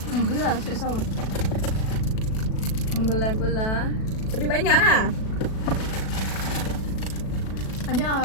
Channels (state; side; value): late; right; 37 ms